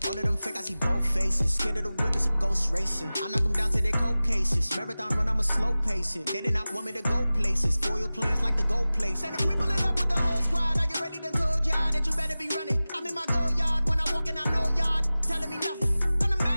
All of them fake, I see both faces. Scared of the whip, it's a ghost racing. I knock them down to their cold cases. Marathon run, I'ma slow pace it. They did not want me to go places. Foil plans like the go place. And if we pulling up with the whole squad, are you ready? Done told y'all that you better be running. I'm in my go yard. When I walk in, I know y'all telling me nothing. I'm the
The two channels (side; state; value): both; inverted; correlation -0.97